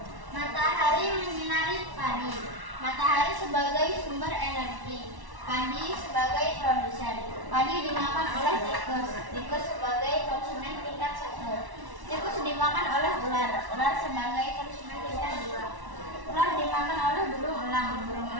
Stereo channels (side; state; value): left; late; 1.1 ms